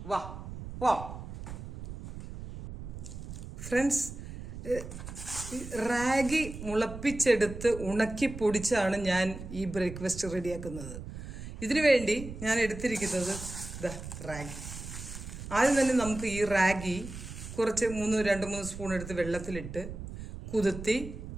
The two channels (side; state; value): right; noise; rumble, 10 dB below the sound